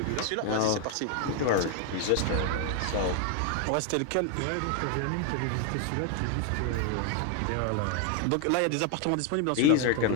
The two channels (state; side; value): different; both; correlation 0.00